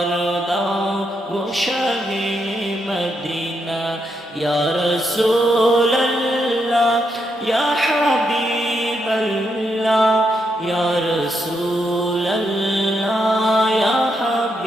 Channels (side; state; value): both; normal; correlation 0.80